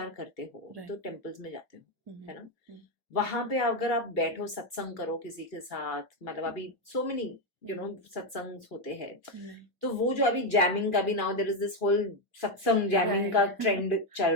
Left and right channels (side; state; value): both; normal; correlation 0.06